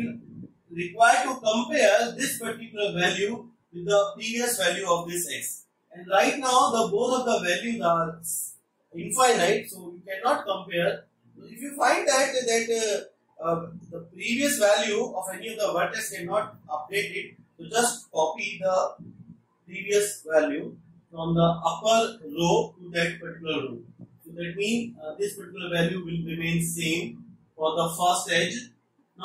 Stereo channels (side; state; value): both; identical; correlation 1.00